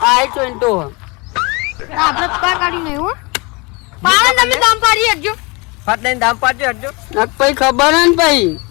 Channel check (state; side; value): quieter; right; 27.9 dB